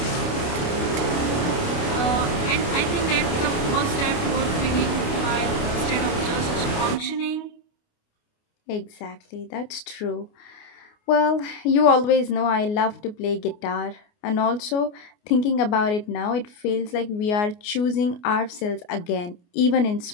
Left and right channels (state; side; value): late; right; 29 ms